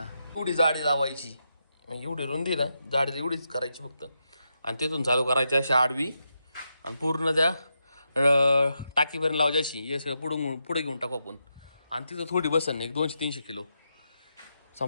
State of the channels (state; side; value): inverted; both; correlation -0.85